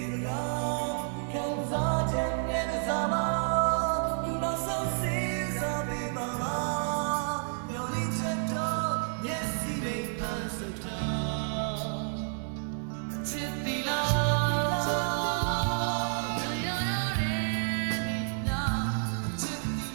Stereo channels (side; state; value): left; silent; digital silence